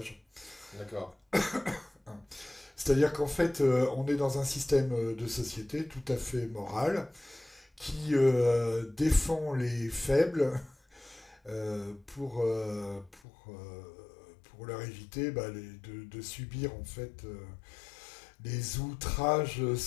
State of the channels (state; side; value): drops out; right; at 13.2 s